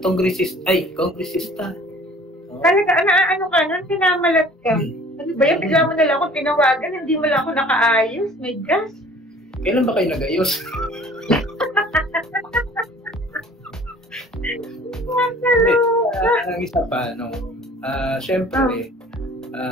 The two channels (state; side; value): normal; both; correlation 0.50